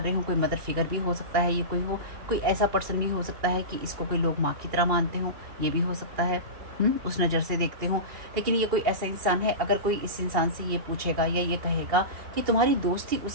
रहे हो, कोई मदर फिगर भी हो सकता है, ये कोई ऐसा पर्सन भी हो सकता है कि इसको कोई लोग माँ की तरह मानते हो, ये भी हो सकता है, उस नज़र से देखते हो। लेकिन ये कोई ऐसा इंसान है, अगर कोई इस इंसान से ये पूछेगा या ये कहेगा कि तुम्हारी दोस्ती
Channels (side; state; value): left; late; 2.8 ms